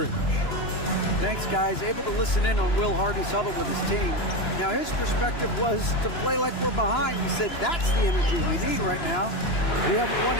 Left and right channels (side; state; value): right; late; 2.9 ms